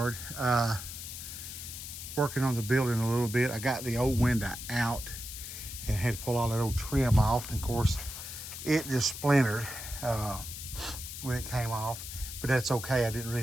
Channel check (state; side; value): noise; left; hiss, 9 dB below the sound